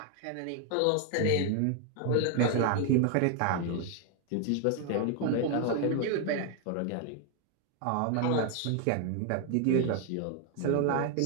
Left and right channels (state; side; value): different; both; correlation 0.01